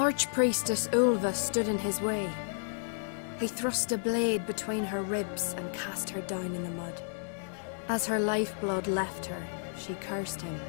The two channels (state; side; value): silent; right; 57 dB below the other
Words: Ulva stood in his way. He thrust a blade between her ribs and cast her down in the mud. As her lifeblood left her, she cursed him,